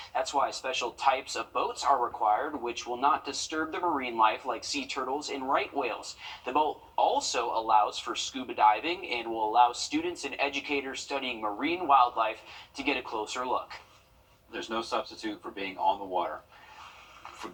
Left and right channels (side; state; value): both; identical; correlation 1.00